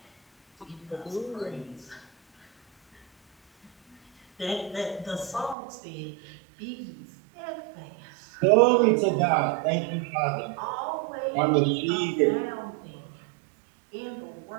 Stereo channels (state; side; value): drops out; left; at 5.6 s